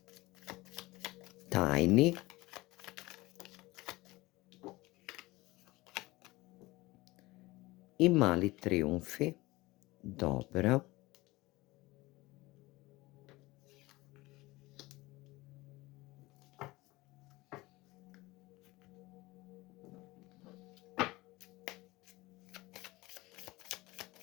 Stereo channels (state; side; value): quieter; right; 20.7 dB